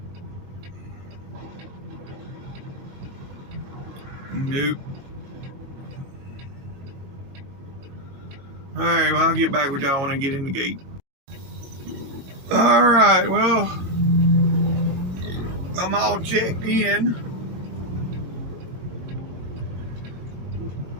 Nope. Alright, well, I'll get back with y'all when I get in the gate. Alright, well, I'm all checked in.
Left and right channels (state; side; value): late; left; 22 ms